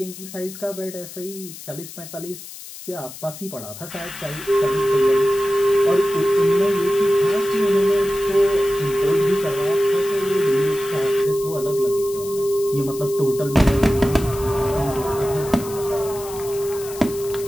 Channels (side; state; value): left; noise; hiss, 14 dB below the sound